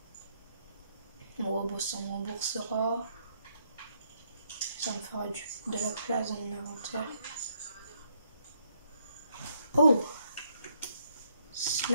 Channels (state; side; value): inverted; both; correlation -0.73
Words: Bon, bon, ça me remboursera. Ça me fera de la place dans mon inventaire. Oh!